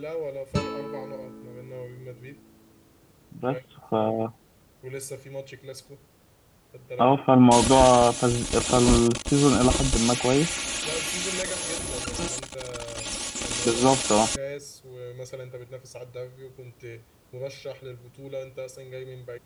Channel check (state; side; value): identical; both; correlation 1.00